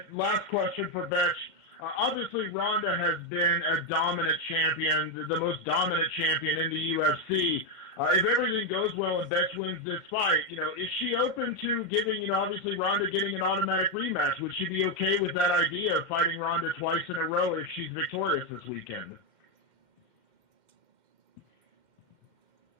last question for Bethe. Obviously, Ronda has been a dominant champion, the most dominant champion in the UFC. If everything goes well and Bethe wins this fight, is she open to giving, obviously Ronda getting an automatic rematch? Would she be okay with that idea of fighting Ronda twice in a row if she's victorious this weekend?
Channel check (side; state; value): left; late; 2.1 ms